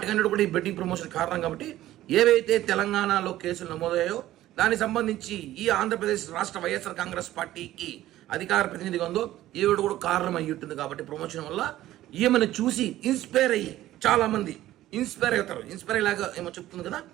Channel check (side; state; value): left; quieter; 14.5 dB